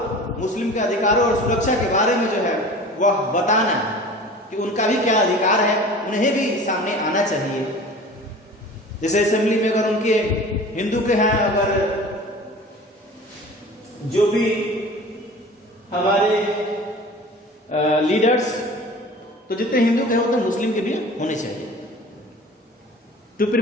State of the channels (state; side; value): normal; both; correlation 0.41